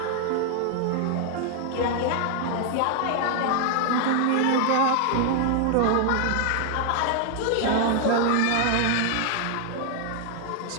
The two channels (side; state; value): both; different; correlation 0.00